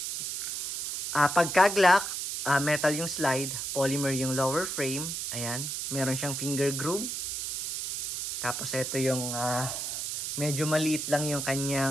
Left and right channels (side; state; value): right; noise; hiss, 4 dB below the sound